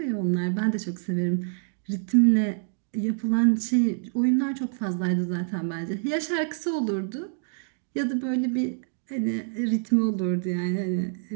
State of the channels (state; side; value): silent; left; digital silence